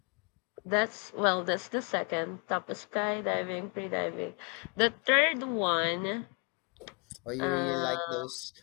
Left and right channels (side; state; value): right; quieter; 34.8 dB